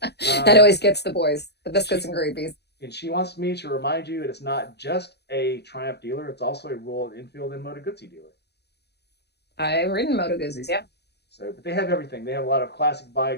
That always gets the boys, the biscuits She and gravies. and she wants me to remind you that it's not just a Triumph dealer; it's also a Royal Enfield and Moto Guzzi dealer. I've ridden Moto Guzzi's, yeah. So, but they have everything. They have a lot of classic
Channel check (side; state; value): right; late; 0.48 ms